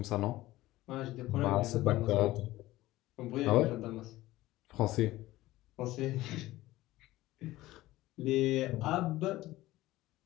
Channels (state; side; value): quieter; right; 17.0 dB